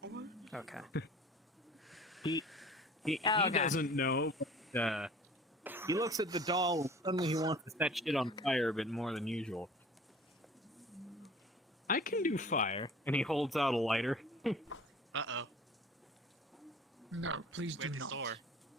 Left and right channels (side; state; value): both; normal; correlation 0.46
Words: Okay. he Oh, okay. doesn't know. But, he looks at the doll and suddenly he wants to set shit on fire a bit more than usual. I can do fire, and he holds out a lighter. Uh-oh. No, please do Where's the not.